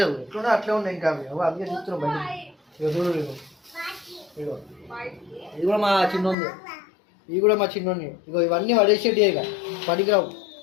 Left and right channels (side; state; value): right; drops out; at 6.4 s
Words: లేదు, ఎట్లున్నా అట్లే ఉన్నాయి. ఇంకా అవి అందుకే చూస్తున్నాం బయట. ఇక చూడు, ఇగో ఇది కూడా మా చిన్నోంది, ఇవి కూడా మా చిన్నోని. ఇగో ఇవన్నీ పడేసేటి, ఇక పడికిరావు,